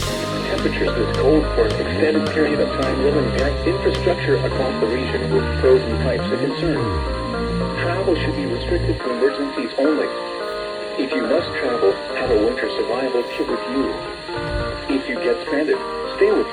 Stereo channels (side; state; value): both; identical; correlation 1.00